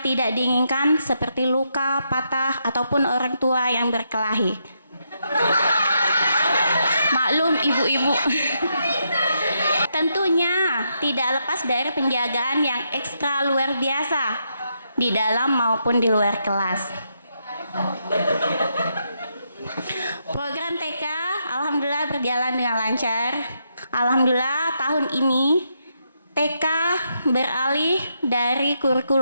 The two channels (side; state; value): both; inverted; correlation -0.80